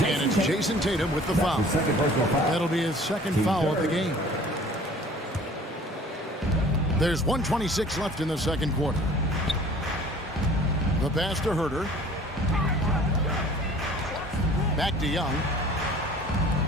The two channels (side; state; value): both; normal; correlation 0.49